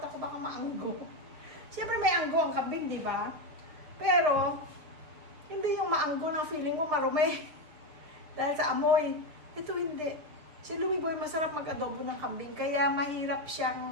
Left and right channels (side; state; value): left; late; 6.6 ms